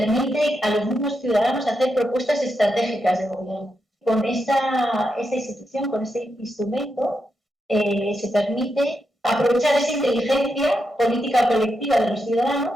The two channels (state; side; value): normal; both; correlation 0.85